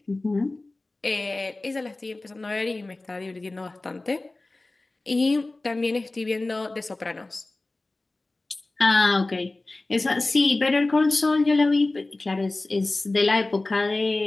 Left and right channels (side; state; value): right; quieter; 3.0 dB